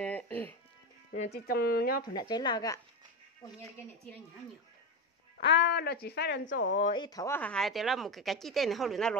chỉ trong nhớ phần đặt chế là cả nó chỉ phải làm cho ít thấu hay thì là một cái chi tiết này họ luyện nó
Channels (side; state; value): both; normal; correlation 0.15